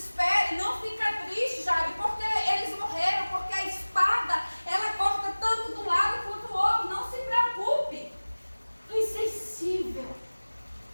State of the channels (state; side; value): inverted; both; correlation -1.00